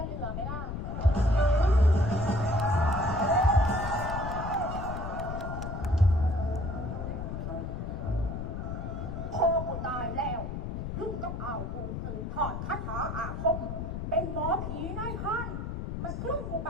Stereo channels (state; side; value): noise; left; rumble, 5 dB below the sound